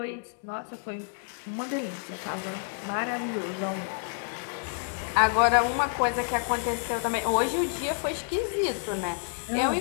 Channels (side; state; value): right; silent; 59 dB below the other